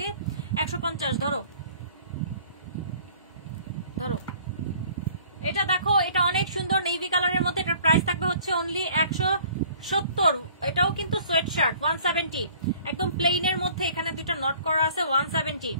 150 ধরো ধরো। এটা দেখো, এটা অনেক সুন্দর নেভি কালারের মধ্যে। এটার প্রাইস থাকবে হচ্ছে অনলি 170। এটাও কিন্তু সোয়েট শার্ট 170, একদম প্লেনের মধ্যে। এখানে দুইটা নট করা আছে 170।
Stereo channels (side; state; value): both; inverted; correlation -0.54